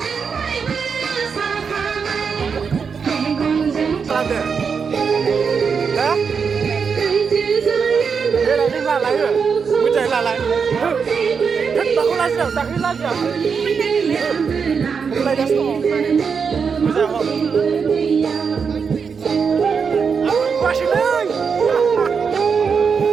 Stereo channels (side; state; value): left; quieter; 6.0 dB